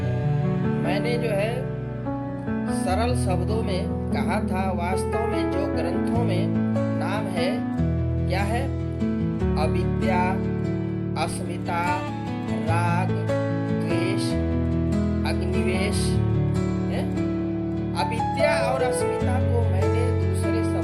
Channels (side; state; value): both; identical; correlation 1.00